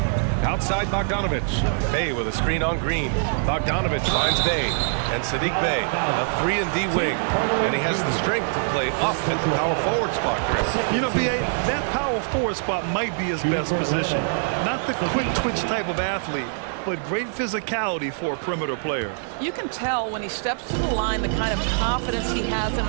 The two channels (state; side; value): silent; left; digital silence